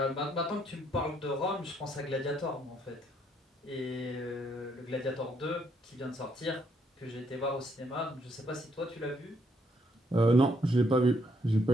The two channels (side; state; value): both; normal; correlation 0.72